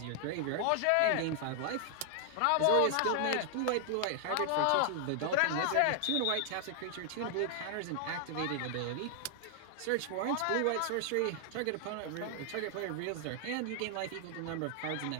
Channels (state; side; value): different; both; correlation 0.00